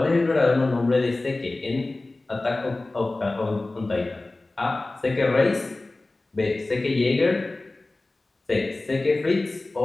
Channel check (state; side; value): quieter; right; 3.0 dB